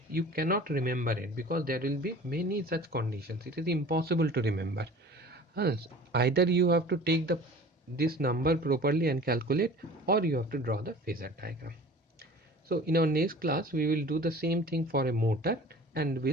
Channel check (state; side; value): normal; both; correlation 0.43